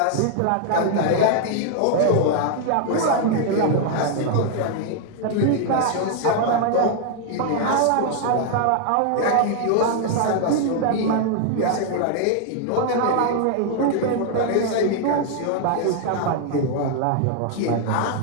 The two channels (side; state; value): both; different; correlation 0.00